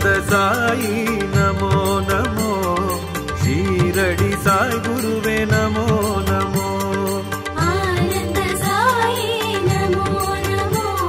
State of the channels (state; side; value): identical; both; correlation 1.00